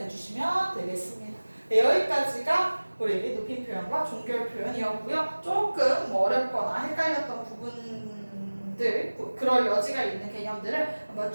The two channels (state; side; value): inverted; both; correlation -1.00